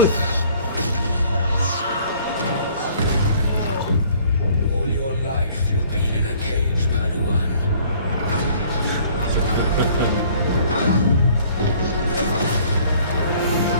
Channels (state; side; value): inverted; both; correlation -0.56